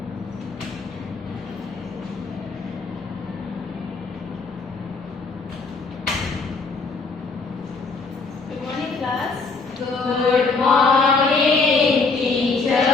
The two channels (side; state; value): right; quieter; 4.2 dB